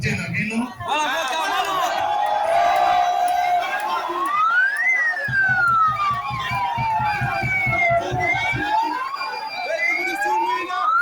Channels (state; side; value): identical; both; correlation 1.00